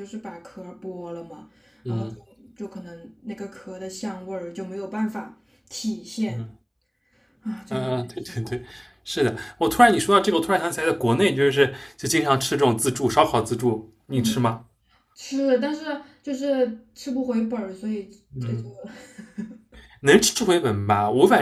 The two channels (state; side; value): identical; both; correlation 1.00